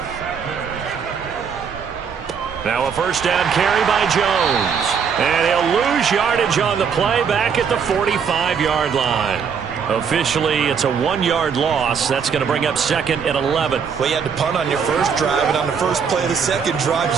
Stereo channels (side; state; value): left; quieter; 6.6 dB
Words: Now a first down carry by Jones. And he'll lose yardage on the play back at the 45-yard line. Officially, it's a 1-yard loss. That's going to bring up 2nd and 11. Well, you had to punt on your first drive, and on the first play of the second drive,